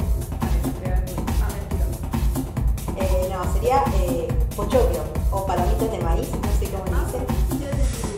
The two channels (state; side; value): identical; both; correlation 1.00